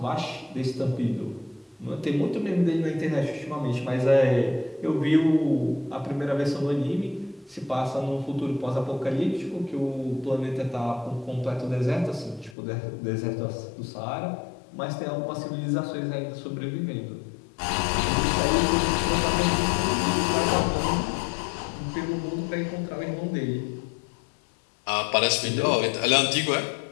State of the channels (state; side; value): drops out; right; at 12.6 s